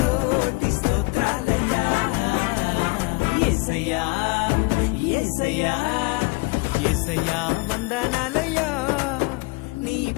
స్తోత్రాలయ్యా. యేసయ్యా యేసయ్యా యేసయ్యా వందనాలయ్యా, నీ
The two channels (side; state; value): right; quieter; 26.5 dB